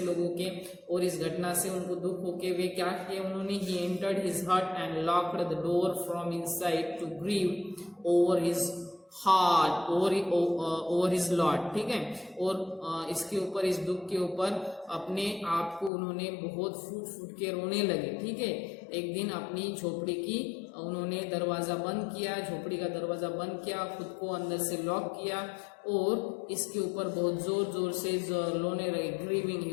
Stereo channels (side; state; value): right; drops out; at 15.9 s